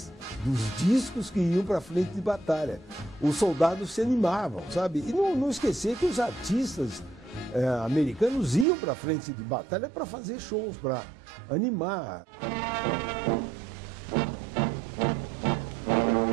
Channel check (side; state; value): left; drops out; at 8.7 s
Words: dos discos que iam para frente de batalha. Os soldados se animavam, sabe? E não esquecer que os artistas americanos iam para frente de batalha para fazer shows, para animar.